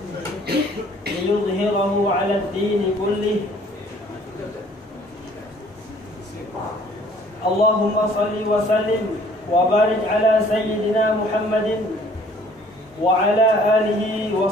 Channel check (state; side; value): normal; both; correlation 0.56